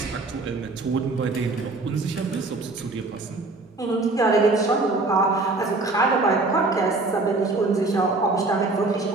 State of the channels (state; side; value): quieter; left; 3.3 dB